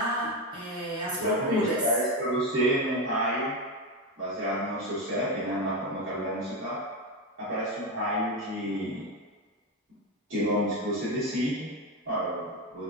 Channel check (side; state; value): both; normal; correlation 0.13